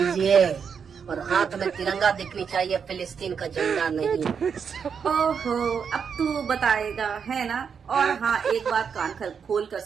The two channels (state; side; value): quieter; left; 6.7 dB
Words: और हाथ में तिरंगा दिखनी चाहिए, फिलिस्तीन का झंडा नहीं। ओहो, अब तू बताएगा है ना। और हाँ, एक बात कान खोल कर